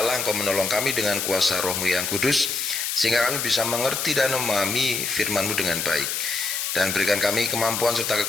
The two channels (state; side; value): noise; left; hiss, 2 dB below the sound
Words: Allah Engkau menolong kami dengan kuasa Roh-Mu yang kudus, sehingga kami bisa mengerti dan memahami firman-Mu dengan baik. Dan berikan kami kemampuan serta